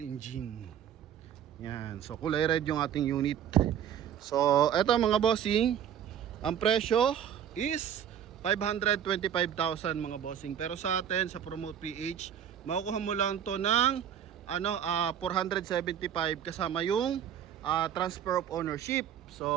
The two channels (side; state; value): left; quieter; 9.3 dB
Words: engine. Yan, so kulay red yung ating unit. So eto mga bossing, ang presyo is 525,000 mga bossing. Pero sa atin sa Promote PH, makukuha mo lang to ng 475 kasama yung transfer of ownership.